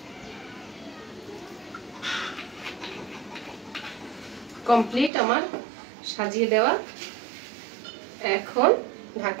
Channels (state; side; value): drops out; left; at 5.1 s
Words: কমপ্লিট আমার সাজিয়ে দেওয়া। এখন